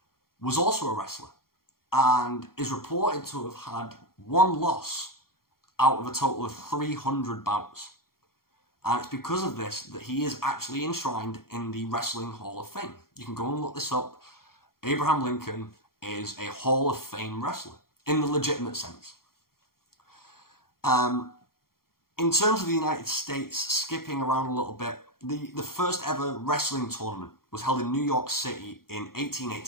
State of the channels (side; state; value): right; late; 0.93 ms